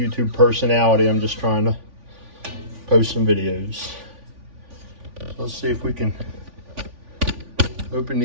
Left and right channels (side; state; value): left; late; 3.5 ms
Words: personality. I'm just trying to post some videos. So let's see if we can open